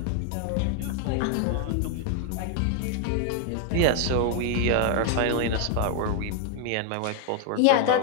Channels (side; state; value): both; different; correlation 0.00